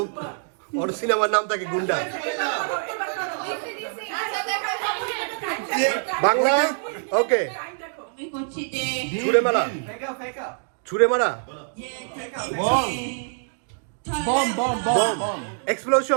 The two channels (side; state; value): left; silent; digital silence